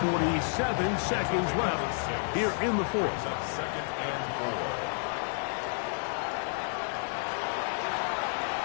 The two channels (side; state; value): right; silent; 57 dB below the other